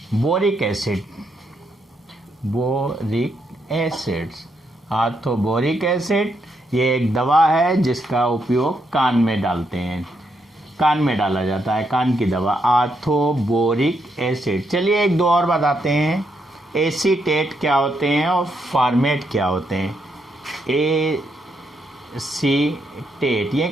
boric acid, orthoboric acid. ये एक दवा है जिसका उपयोग कान में डालते हैं, कान में डाला जाता है, कान की दवा, आर्थोबोरिक एसिड। चलिए एक दो और बताते हैं। एसीटेट क्या होते हैं और फॉर्मेट क्या होते हैं? एसीटेट ये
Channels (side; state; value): both; normal; correlation 0.78